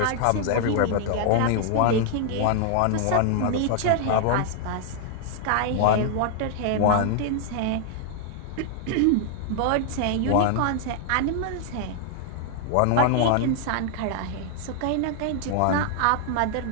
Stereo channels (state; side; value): different; both; correlation 0.00